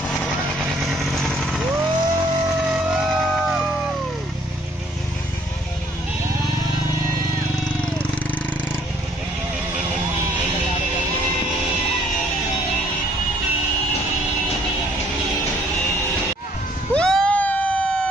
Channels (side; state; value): both; normal; correlation 0.62